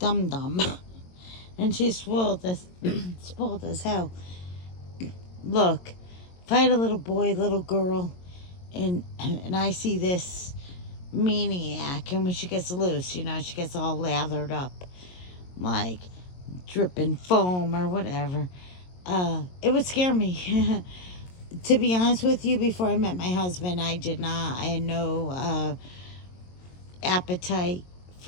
dum, and she's spoiled as hell. Look, if I had a little boy, little girl, and I see this maniac, and when she gets loose, she gets all lathered up, like dripping foam or whatever. It would scare me. To be honest with you, before I met my husband, I had no appetite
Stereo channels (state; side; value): late; right; 22 ms